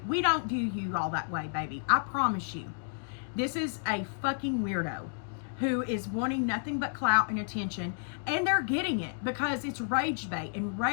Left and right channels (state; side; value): silent; right; digital silence